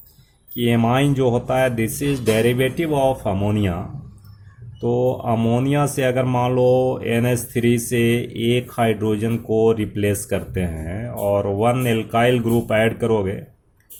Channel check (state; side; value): identical; both; correlation 1.00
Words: कि एमाइन जो होता है, this is derivative of ammonia. तो अमोनिया से अगर मान लो NH3 से एक हाइड्रोजन को रिप्लेस करते हैं और वन एल्काइल ग्रुप ऐड करोगे